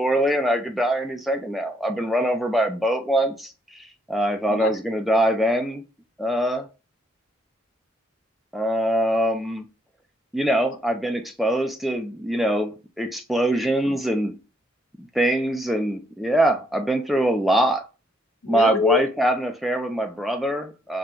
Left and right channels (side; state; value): both; normal; correlation 0.72